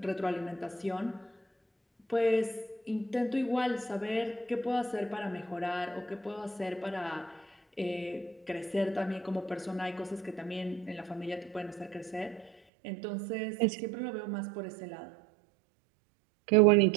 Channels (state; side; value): drops out; left; at 12.6 s